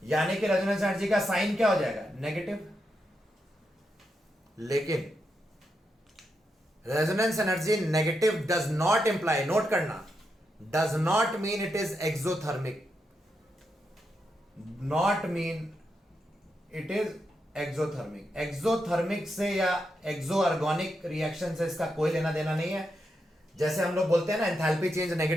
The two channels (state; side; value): normal; both; correlation 0.84